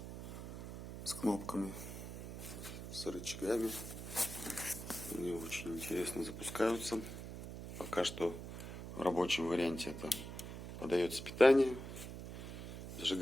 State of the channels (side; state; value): right; noise; hum, 9 dB below the sound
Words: с кнопками, с рычагами. Они очень интересно запускаются. Пока что в рабочем варианте это подается питание.